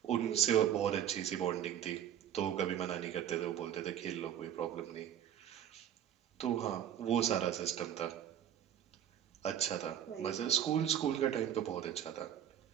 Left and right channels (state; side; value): quieter; left; 10.0 dB